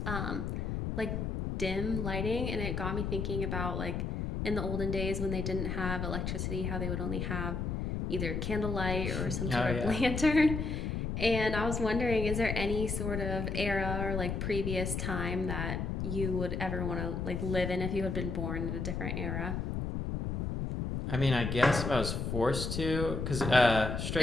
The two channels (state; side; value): noise; left; rumble, 2 dB below the sound